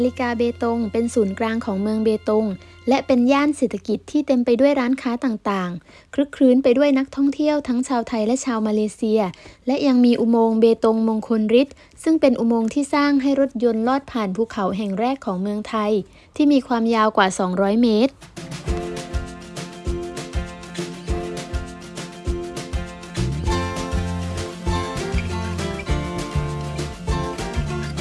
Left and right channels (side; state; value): both; identical; correlation 1.00